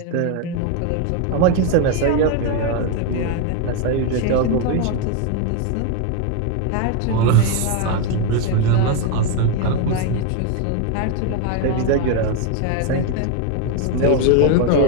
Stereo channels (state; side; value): different; both; correlation 0.01